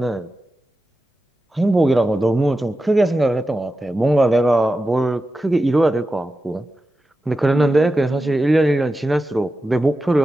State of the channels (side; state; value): both; normal; correlation 0.92